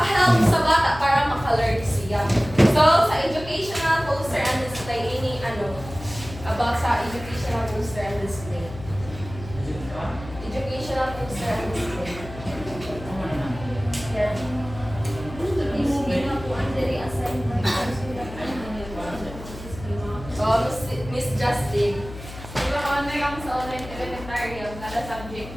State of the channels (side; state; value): left; noise; hum, 13 dB below the sound